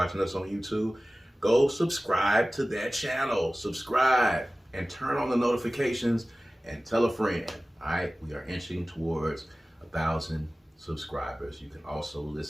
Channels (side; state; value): both; normal; correlation 0.97